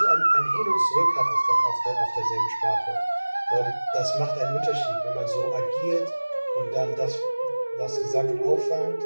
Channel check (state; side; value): inverted; both; correlation -1.00